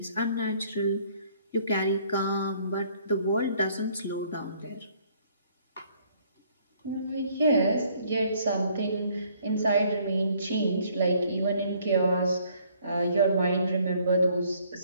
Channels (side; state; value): both; inverted; correlation -0.63